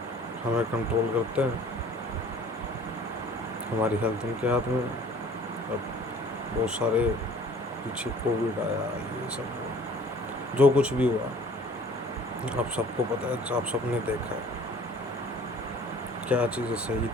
हमें कंट्रोल करते हैं। हमारी हेल्थ उनके हाथ में है। अब बहुत सारे पीछे कोविड आया, ये सब जो कुछ भी हुआ, आप सबको पता है, आप सबने देखा है क्या चीज़ें सही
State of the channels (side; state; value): both; normal; correlation 0.50